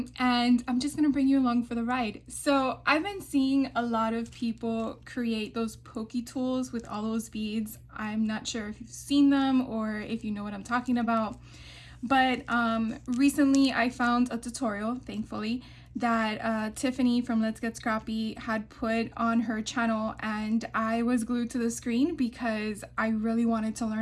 I'm just gonna bring you along for the ride. So I've been seeing a lot of people create those Pokey tools with all those beads. I'm not sure if you've seen them or if you know what I'm talking about. But recently I found a tutorial, thankfully, that Tiffany from Let's Get Scrappy had put on her channel, and I was glued to the screen because I really wanted to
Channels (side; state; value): both; identical; correlation 1.00